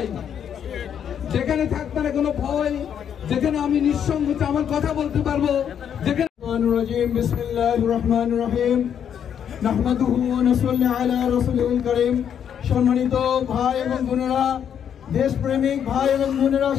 যেখানে থাকবে না কোনো ভয়, যেখানে আমি নিঃসংকোচে আমার কথা বলতে পারবো, যেখানে বিসমিল্লাহির রহমানির রহিম। নাহমাদুহু ওয়া নুসাল্লি আলা রাসূলিল কারীম। সম্মানিত ভাই এবং বোনেরা, দেশপ্রেমিক ভাই এবং বোনেরা,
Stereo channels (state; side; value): quieter; right; 8.6 dB